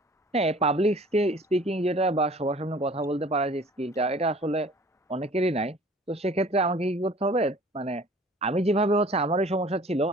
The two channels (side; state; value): both; normal; correlation 0.49